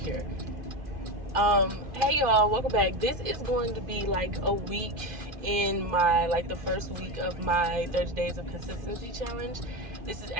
Hey y'all, welcome back. This is going to be like a week in my, the first week of my 30 days of consistency challenge. This is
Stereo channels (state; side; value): late; left; 2.5 ms